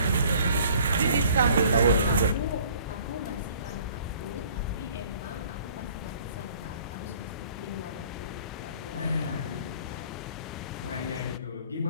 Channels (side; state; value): both; inverted; correlation -0.54